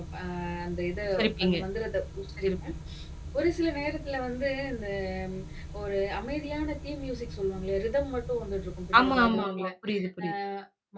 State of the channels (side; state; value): both; identical; correlation 1.00